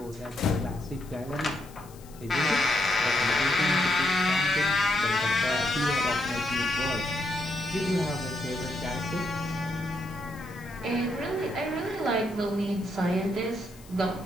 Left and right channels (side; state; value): left; noise; hiss, 23 dB below the sound